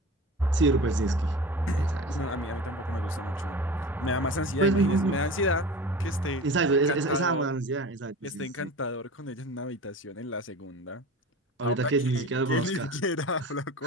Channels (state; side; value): normal; both; correlation 0.35